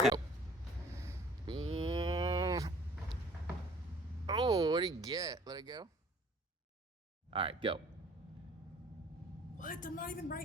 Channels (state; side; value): normal; both; correlation 0.53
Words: Oh, what do you get? Let it go. All right, go. What? I'm not even